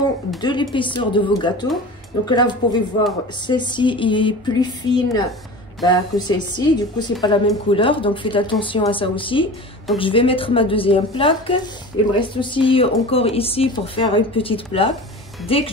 de l'épaisseur de vos gâteaux. Donc là, vous pouvez voir, celle-ci est plus fine que celle-ci. Du coup, c'est pas la même couleur, donc faites attention à ça aussi. Donc je vais mettre ma deuxième plaque. Il me reste aussi encore ici pour faire une petite plaque. Dès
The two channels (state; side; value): normal; both; correlation 0.35